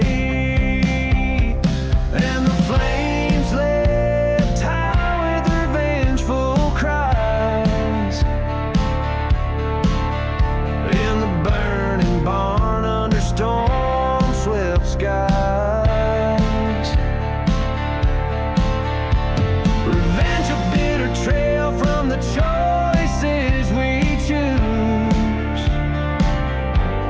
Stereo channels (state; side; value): identical; both; correlation 1.00